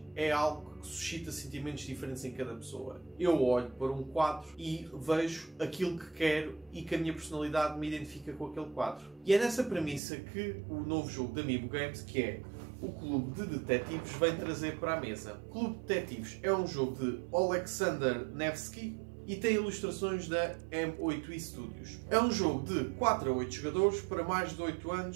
é algo que suscita sentimentos diferentes em cada pessoa. Eu olho para um quadro e vejo aquilo que quero e que a minha personalidade me identifica com aquele quadro. E é nessa premissa que o novo jogo da Amiibo Games, que é o Clube de Detetives, vem trazer para a mesa. O Clube de Detetives é um jogo de Alexander Nevsky e tem ilustrações da M8i Studios. É um jogo de 4 a 8 jogadores para mais de 8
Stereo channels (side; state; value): left; drops out; at 10.0 s